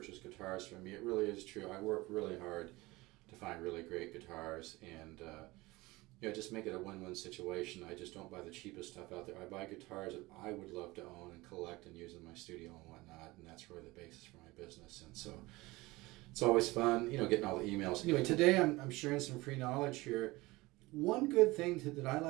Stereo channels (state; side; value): quieter; left; 21.1 dB